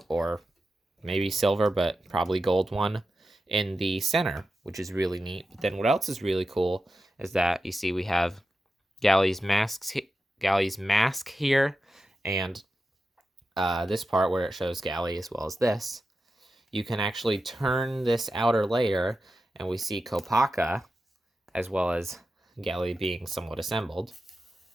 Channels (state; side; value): normal; both; correlation 0.91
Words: or maybe silver, but probably gold one, in the center, which is really neat. But then what else is really cool is that you see we have Gali's mask here, and this part where it shows Gali as well as this. You can actually turn this outer layer, and we see Kopaka, as well as Gali being somewhat assembled.